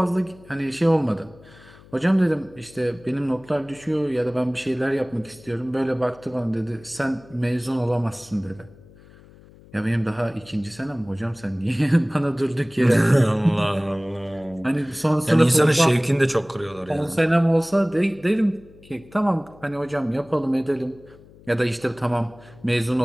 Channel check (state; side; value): noise; left; hum, 24 dB below the sound